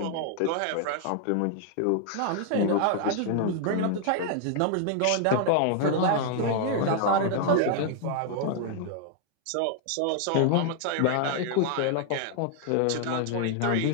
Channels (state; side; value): different; both; correlation 0.00